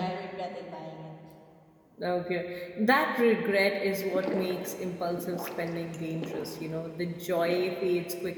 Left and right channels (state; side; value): identical; both; correlation 1.00